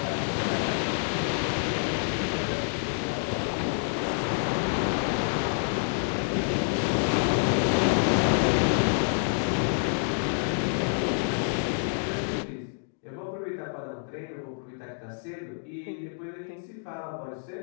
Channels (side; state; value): right; silent; digital silence